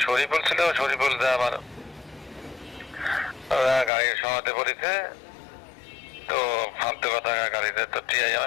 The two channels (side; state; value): right; drops out; at 3.9 s